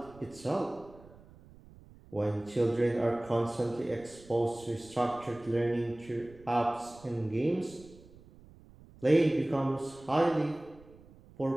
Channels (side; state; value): right; noise; rumble, 23 dB below the sound